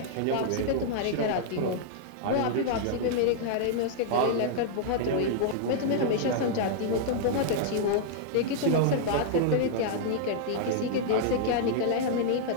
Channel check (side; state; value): both; different; correlation -0.01